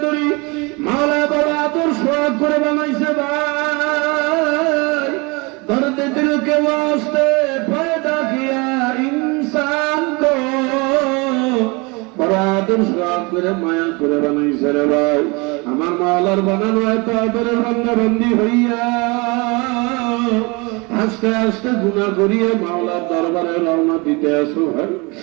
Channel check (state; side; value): quieter; left; 27.6 dB